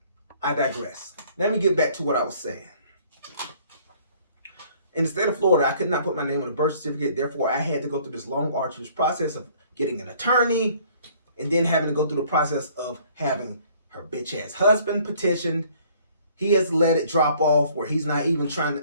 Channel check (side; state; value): both; inverted; correlation -0.58